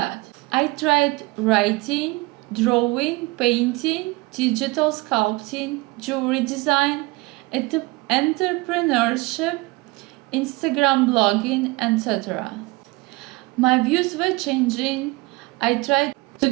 I tried writing, drawing, painting, digital sculpting, jewelry design, entrepreneurship, Instagram blogging, etc. My views were changing. I tried to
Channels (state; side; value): quieter; left; 22.6 dB